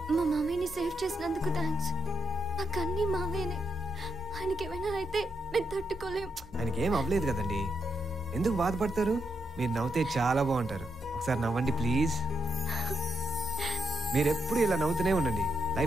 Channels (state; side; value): normal; both; correlation 0.81